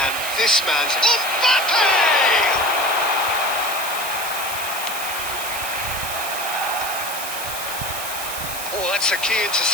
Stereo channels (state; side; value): noise; right; hiss, 6 dB below the sound